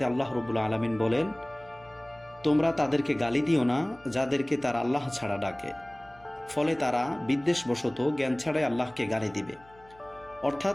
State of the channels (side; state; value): left; noise; hum, 26 dB below the sound